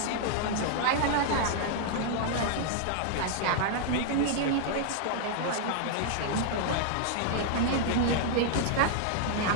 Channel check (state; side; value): different; both; correlation -0.01